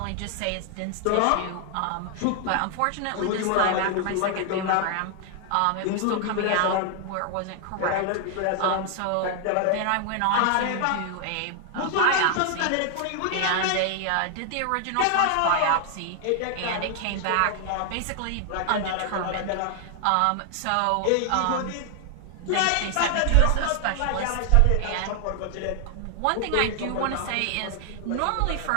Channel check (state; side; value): different; both; correlation 0.00